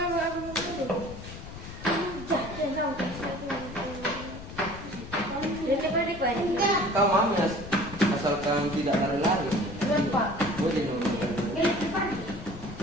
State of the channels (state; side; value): noise; left; rumble, 12 dB below the sound